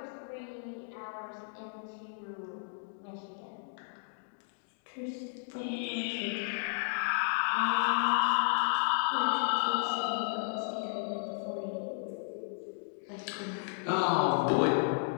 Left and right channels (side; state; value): right; silent; digital silence